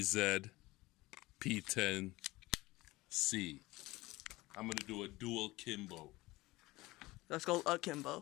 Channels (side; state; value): right; quieter; 20.0 dB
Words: P10 Sc. I'm gonna do a dual kimbo. That's called